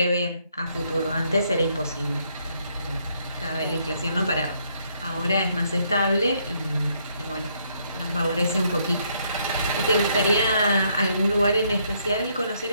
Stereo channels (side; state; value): both; inverted; correlation -0.71